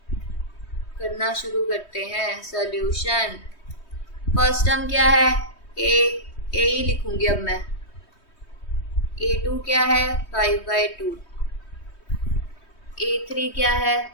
करना शुरू करते हैं। सॉल्यूशन, फर्स्ट टर्म क्या है? ए ही लिखूंगी अब मैं। A2 क्या है? 5/2। A3 क्या है?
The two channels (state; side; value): late; right; 3.2 ms